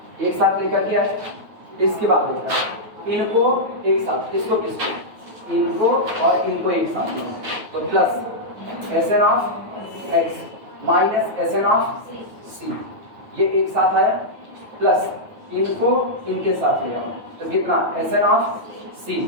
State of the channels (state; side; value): late; left; 9.3 ms